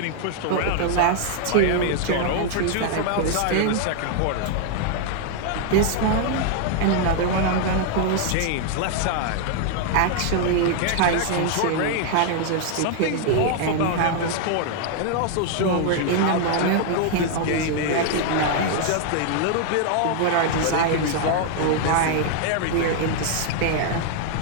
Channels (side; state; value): both; different; correlation 0.00